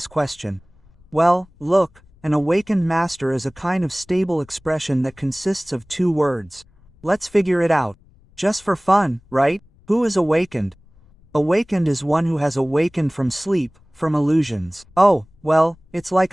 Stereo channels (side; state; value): left; noise; rumble, 29 dB below the sound